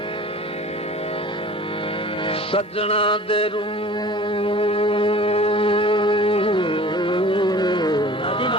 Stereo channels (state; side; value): normal; both; correlation 0.44